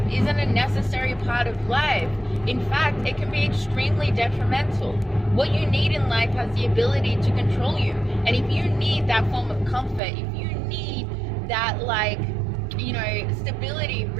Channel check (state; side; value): drops out; left; at 10.0 s